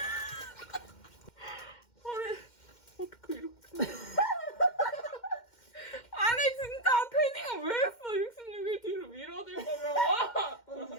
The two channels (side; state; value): right; late; 2.1 ms